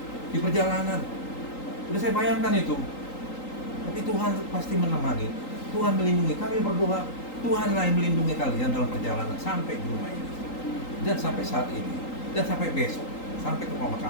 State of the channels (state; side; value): late; right; 3.8 ms